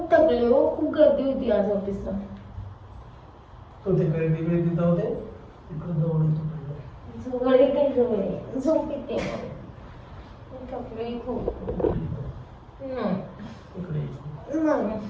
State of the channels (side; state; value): both; identical; correlation 1.00